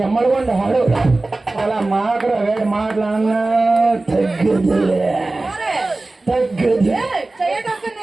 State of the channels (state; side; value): quieter; left; 3.1 dB